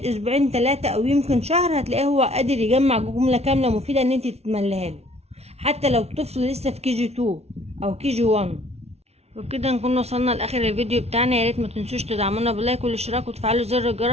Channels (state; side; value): late; left; 0.31 ms